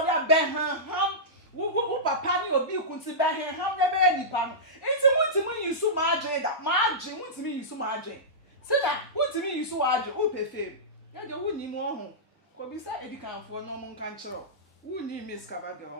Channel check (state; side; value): normal; both; correlation -0.16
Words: dey ben han wo papa ni obi kunti ba he ham na be nipa no enti mutimi yisu maage da maage mutimi yisu maage sida mutimi yisu waage o pefe ya de wuni mu ho ko bi sa edikanfo no mo nkan kiro wuni miss kaba de